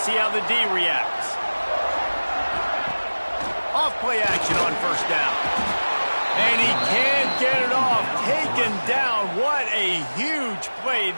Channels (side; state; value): both; inverted; correlation -1.00